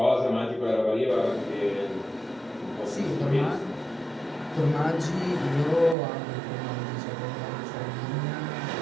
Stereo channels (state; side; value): drops out; left; at 6.0 s